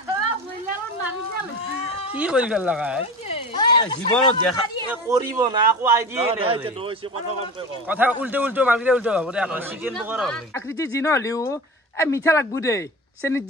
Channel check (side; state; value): both; normal; correlation 0.31